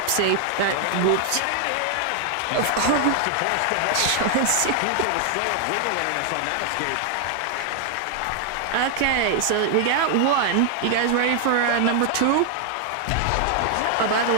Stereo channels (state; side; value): different; both; correlation 0.00